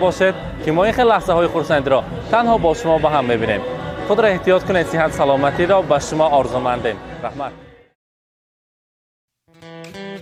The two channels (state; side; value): identical; both; correlation 1.00